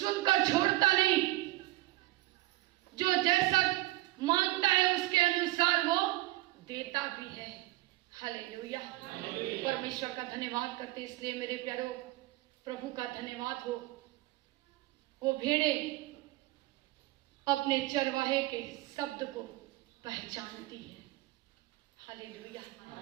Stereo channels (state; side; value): quieter; left; 18.7 dB